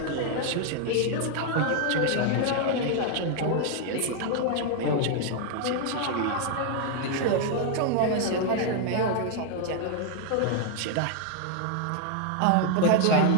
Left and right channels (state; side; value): different; both; correlation 0.00